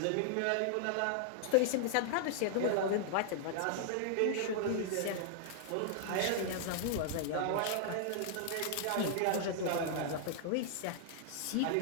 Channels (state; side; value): different; both; correlation -0.01